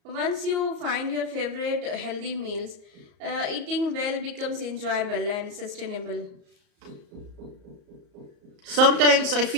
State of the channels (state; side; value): late; left; 34 ms